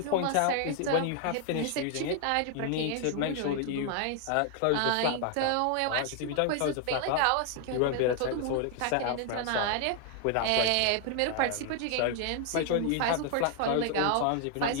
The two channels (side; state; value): both; different; correlation 0.00